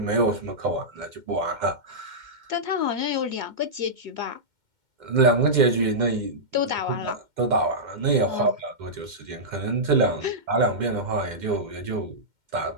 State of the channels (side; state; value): left; late; 2.1 ms